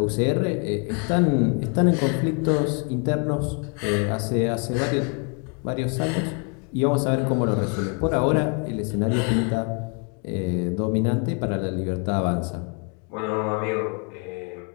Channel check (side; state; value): right; quieter; 37.1 dB